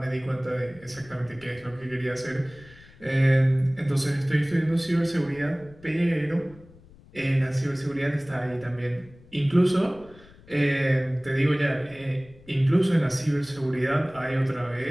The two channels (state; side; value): noise; left; rumble, 24 dB below the sound